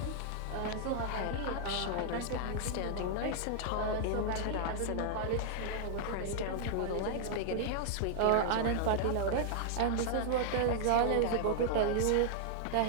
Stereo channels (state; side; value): different; both; correlation -0.01